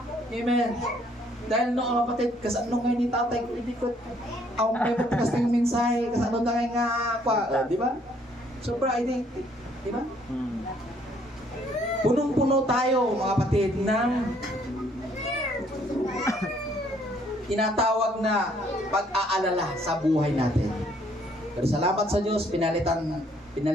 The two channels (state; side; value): normal; both; correlation 0.65